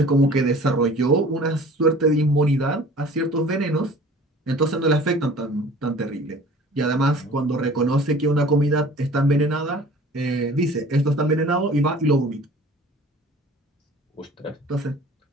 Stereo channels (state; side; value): normal; both; correlation 0.46